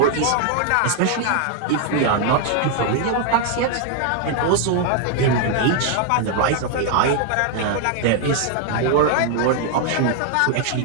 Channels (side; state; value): both; different; correlation 0.00